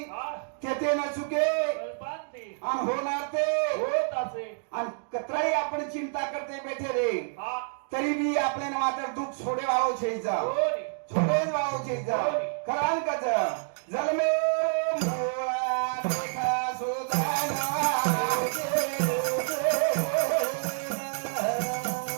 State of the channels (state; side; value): silent; left; digital silence